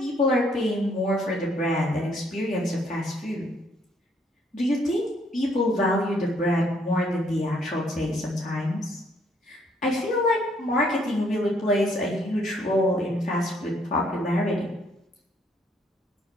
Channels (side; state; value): both; normal; correlation 0.67